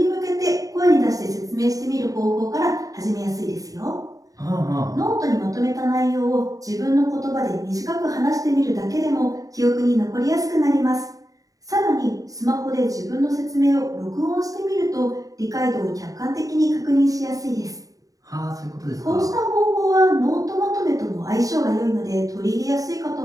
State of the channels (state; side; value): late; left; 0.17 ms